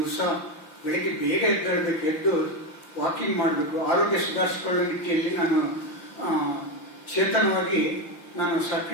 ಬೆಳಿಗ್ಗೆ ಬೇಗ ಎದ್ದೇಳಬೇಕು, ಎದ್ದು ವಾಕಿಂಗ್ ಮಾಡಬೇಕು, ಆರೋಗ್ಯ ಸುಧಾರಿಸಿಕೊಳ್ಳೋ ನಿಟ್ಟಿಯಲ್ಲಿ ನಾನು ಚೇತನವಾಗಿ ನಾನು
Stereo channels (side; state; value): right; late; 6.0 ms